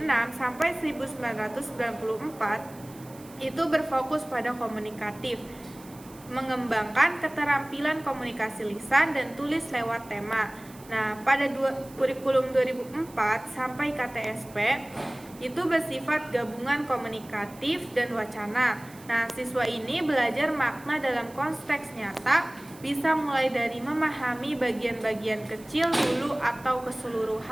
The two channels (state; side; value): noise; right; hiss, 22 dB below the sound